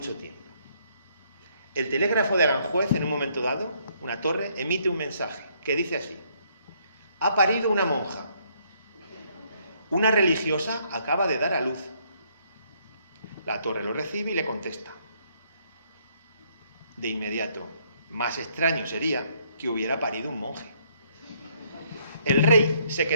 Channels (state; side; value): inverted; both; correlation -0.68